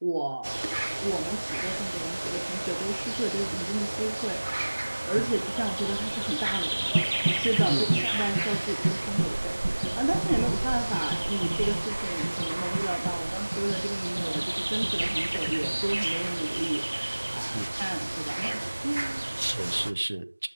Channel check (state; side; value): inverted; both; correlation -1.00